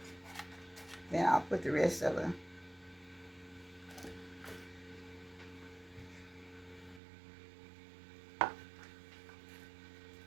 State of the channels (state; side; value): drops out; left; at 7.0 s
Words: Then I'll put the rest of it.